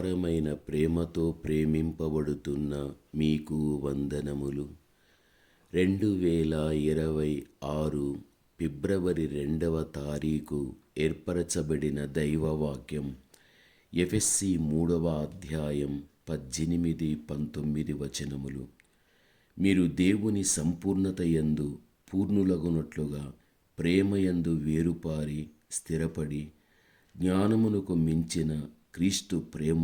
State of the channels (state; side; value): identical; both; correlation 1.00